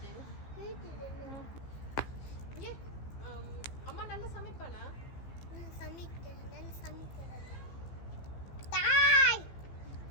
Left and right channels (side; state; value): right; late; 15 ms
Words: அம்மா நல்லா சமைப்பானா? நான் சமைக்கிறேன். தாய்